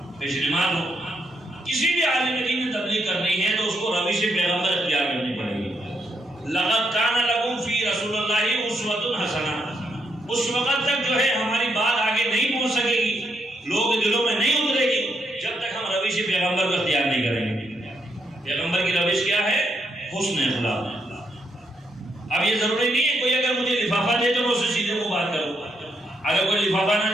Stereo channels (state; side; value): normal; both; correlation 0.78